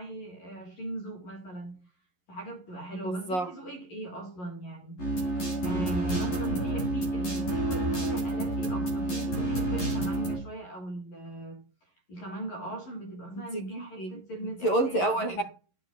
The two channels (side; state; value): right; late; 11 ms